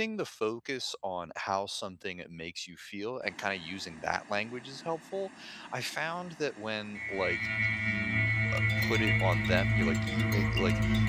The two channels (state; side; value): identical; both; correlation 1.00